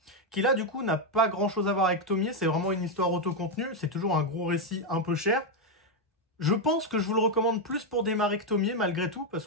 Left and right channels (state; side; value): normal; both; correlation 0.03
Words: qui là du coup n'a pas grand chose à voir avec Tomie, c'est vraiment une histoire autocontenue, c'est toujours un gros récit un peu cher. Je pense que je vous le recommande plus pour démarrer que Tomie, malgré tout, parce